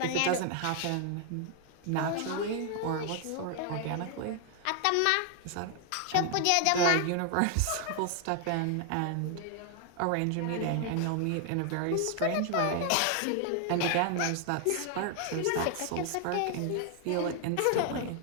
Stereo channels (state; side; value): different; both; correlation 0.00